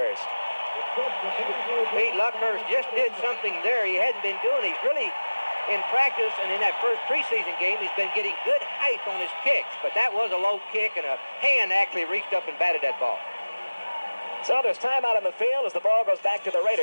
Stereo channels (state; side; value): inverted; both; correlation -1.00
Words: Pete, Luckhurst just did something there he hadn't been doing. He's really, in practice and in that first preseason game, he's been getting good height on his kicks, but that was a low kick, and a hand actually reached up and batted that ball. So there's time out on the field as the ball goes back to the